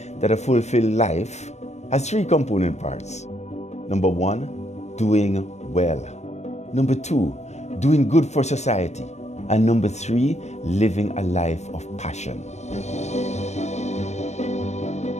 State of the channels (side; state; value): right; late; 0.33 ms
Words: that a fulfilled life has three component parts. Number one, doing well. Number two, doing good for society. And number three, living a life of passion.